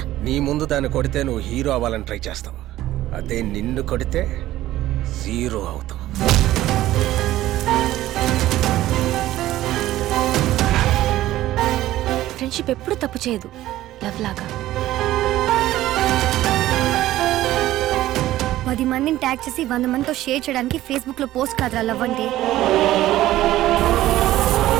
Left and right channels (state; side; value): quieter; left; 14.9 dB